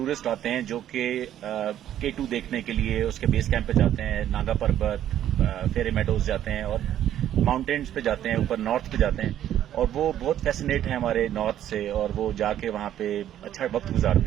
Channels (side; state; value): left; quieter; 11.3 dB